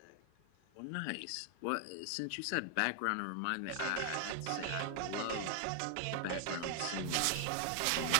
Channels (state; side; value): different; both; correlation 0.00